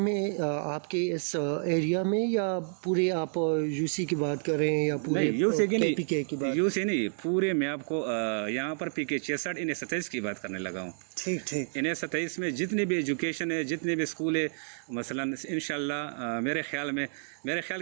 آپ کے اس ایریا میں، یا پورے آپ UC کی بات کر رہے ہیں یا پورے PK کی بات؟ UC نہیں، پورے میں آپ کو یہاں پر PK 66 NA 27 کی بات کرنے لگا ہوں. ٹھیک. NA 27 میں جتنے بھی ایجوکیشن ہے، جتنے بھی اسکول ہے، مثلاً انشاءاللہ میرے خیال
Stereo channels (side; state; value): left; silent; digital silence